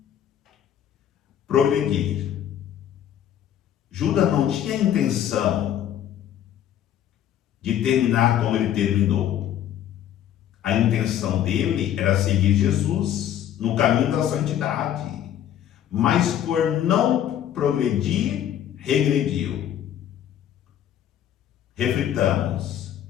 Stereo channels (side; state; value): right; quieter; 10.7 dB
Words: progredir. Judas não tinha intenção de terminar como ele terminou. A intenção dele era seguir Jesus no caminho da santidade, mas por não progredir, regrediu. Reflitamos,